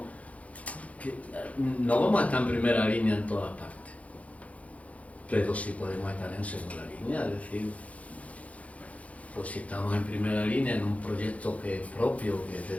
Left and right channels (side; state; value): right; late; 0.066 ms